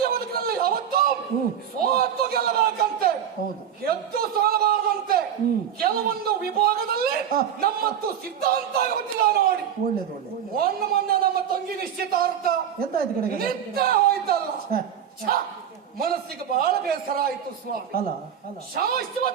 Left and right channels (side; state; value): left; quieter; 8.9 dB